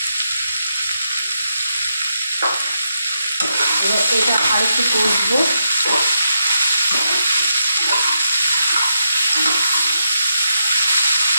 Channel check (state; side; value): inverted; both; correlation -0.83